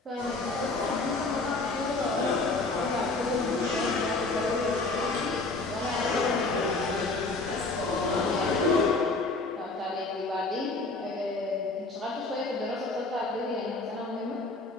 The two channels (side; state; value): right; quieter; 3.4 dB